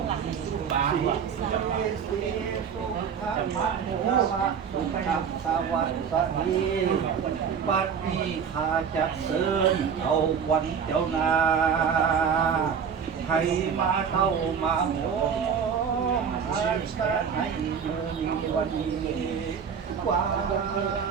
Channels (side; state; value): left; quieter; 7.0 dB